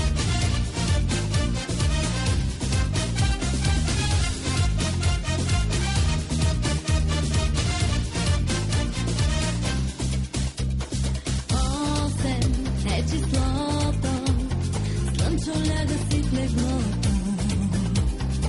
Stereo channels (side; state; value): both; identical; correlation 1.00